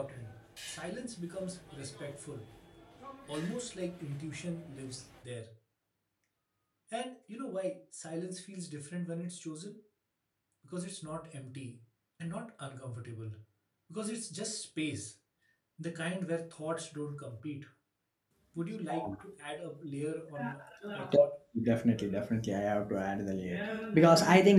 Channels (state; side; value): identical; both; correlation 1.00